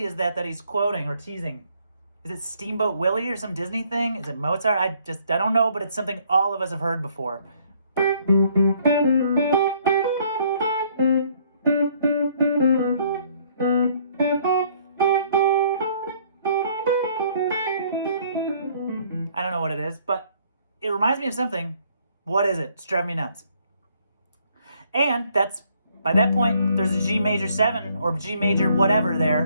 is that he's quoting or teasing? Is it Steamboat Willie or some Disney thing? Is it Mozart? I don't know, but it's something all of us have heard before. I don't know what it is, but it reminds me of something. What is it? It's driving me nuts. And that's, by that point, there's a G major 7 or G major whatever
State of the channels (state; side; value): inverted; both; correlation -0.64